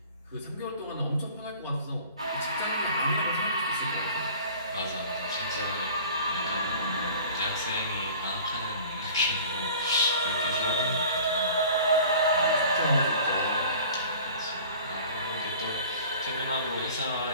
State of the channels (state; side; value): inverted; both; correlation -0.44